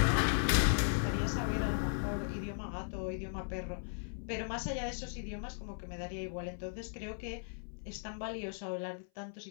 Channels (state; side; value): silent; right; 53 dB below the other